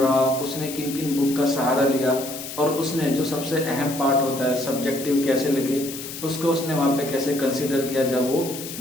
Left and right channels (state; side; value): noise; left; hiss, 10 dB below the sound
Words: उसने किन किन बुक का सहारा लिया, और उसने जो सबसे अहम पार्ट होता है सब्जेक्टिव कैसे लगे उसको उसने वहां पे कैसे कंसिडर किया जब वो